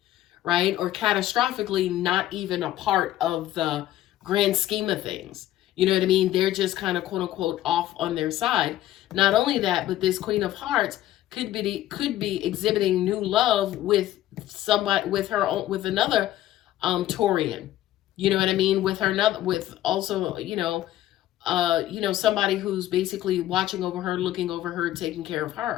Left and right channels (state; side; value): quieter; right; 13.9 dB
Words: right? Or catastrophically not even a part of the grand scheme of things. You know what I mean? They're just kind of quote unquote off on their side. Not only that, but this Queen of Hearts could be exhibiting new love with somebody, with another Taurian. You know what I mean? With also, somebody who's basically watching over her, looking over her, taking care of